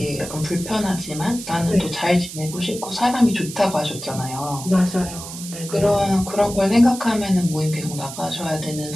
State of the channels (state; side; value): noise; right; hiss, 11 dB below the sound